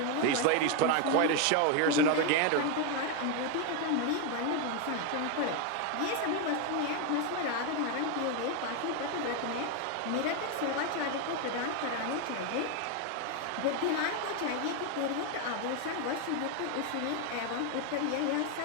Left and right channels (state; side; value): different; both; correlation 0.01